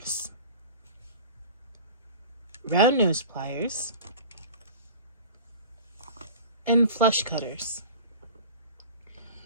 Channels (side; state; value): both; inverted; correlation -0.39